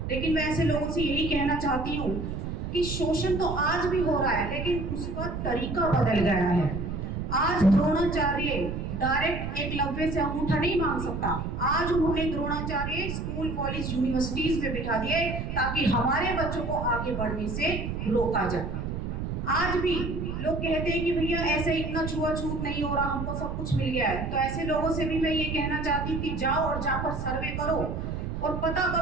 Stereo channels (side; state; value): right; noise; rumble, 4 dB below the sound